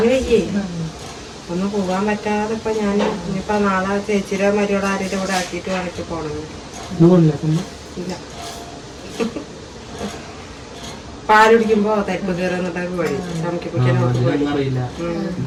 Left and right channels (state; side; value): identical; both; correlation 1.00